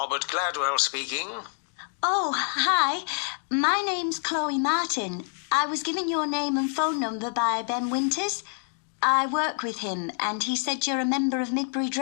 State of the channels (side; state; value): right; silent; 57 dB below the other